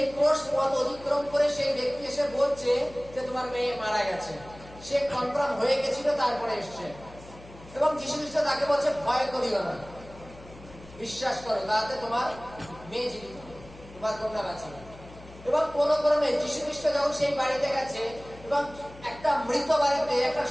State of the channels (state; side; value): noise; left; hum, 19 dB below the sound